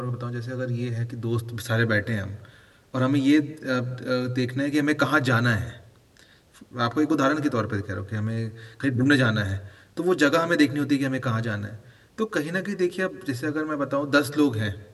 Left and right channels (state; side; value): identical; both; correlation 1.00